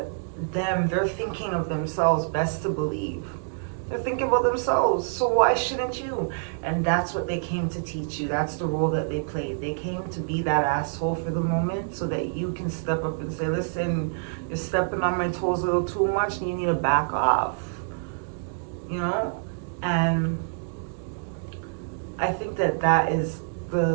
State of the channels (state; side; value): silent; left; digital silence